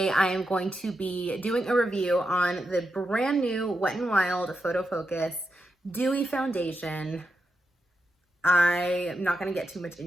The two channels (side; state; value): both; normal; correlation 0.86